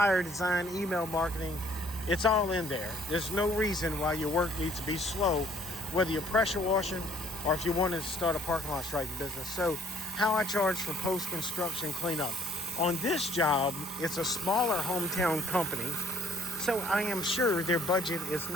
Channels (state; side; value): normal; both; correlation 0.60